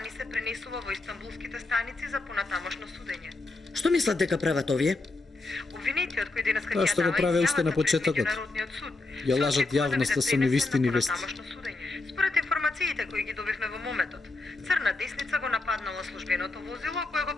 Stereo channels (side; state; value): right; quieter; 3.3 dB